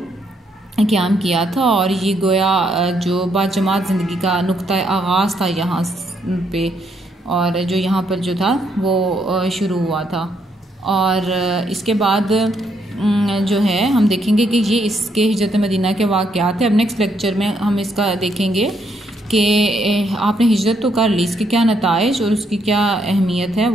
क़याम किया था। और ये गोया जो बाजमात ज़िंदगी का नुक्ता आगाज़ था यहाँ पे, और जो यहाँ पर जो था वो शुरू हुआ था। और इसके बाद जो है हम देखेंगे कि ये इसके हिजरत मदीना के वाक़यात हैं। अब नेक्स्ट लेक्चर में हम इसका देखेंगे कि आपने हिजरत तो कर ली, इसके क्या नताइज और उसकी क्या अहमियत है,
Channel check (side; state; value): both; normal; correlation 0.74